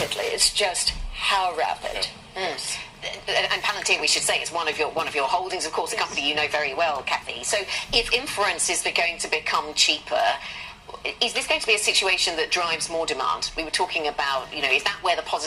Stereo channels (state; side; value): identical; both; correlation 1.00